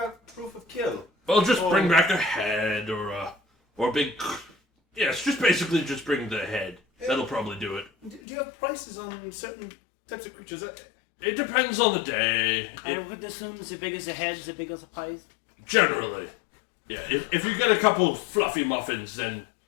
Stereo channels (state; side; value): drops out; right; at 8.2 s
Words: proof of kill? Well, just bring back a head or a big. Yes, just bring the head. That'll probably do it. Do you have prices on certain types of creatures? It depends on the day. I would assume as big as a head, as big as a pies. Generally, yeah. If you get a couple fluffy muffins, then